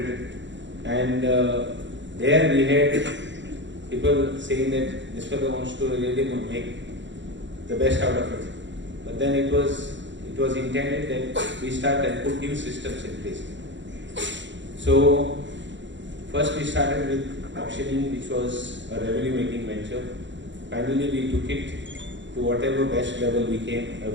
And there we had people saying that this fellow wants to really make the best out of it. But then it was intended that we start and put new systems in place. So first we started with auctioning, which was a revenue-making venture. Finally, we took it to whatever best level we could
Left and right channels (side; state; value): left; late; 0.54 ms